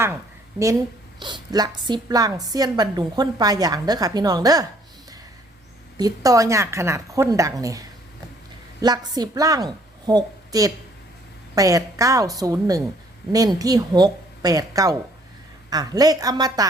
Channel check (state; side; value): normal; both; correlation 0.62